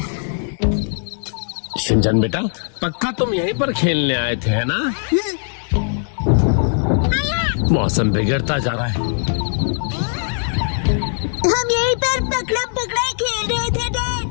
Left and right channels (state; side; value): silent; right; digital silence